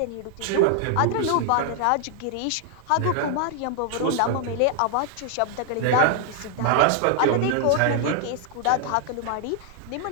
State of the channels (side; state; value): both; different; correlation 0.00